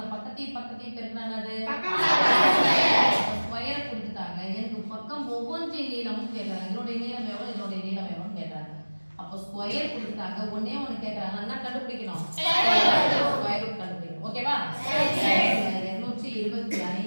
பக்கத்தையும் பெருக்கினா என்னது? ஸ்கொயர் கொடுத்துட்டாங்க. எனக்கு பக்கம் ஒவ்வொன்றின் நீளமும் கேட்கறாங்க. இதனுடைய நீளம் எவ்வளவு, இதனுடைய நீளம் எவ்வளவுன்னு கேட்கறாங்க. அப்போ ஸ்கொயர் கொடுத்துட்டாங்க. ஒன்னே ஒன்று கேட்கறாங்க, என்ன கண்டுபிடிக்கணும்? ஸ்கொயர் ரூட் கண்டுபிடிக்கணும். ஓகேவா?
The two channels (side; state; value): both; inverted; correlation -1.00